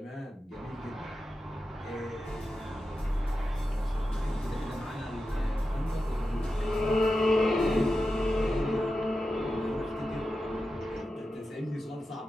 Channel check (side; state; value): both; normal; correlation 0.91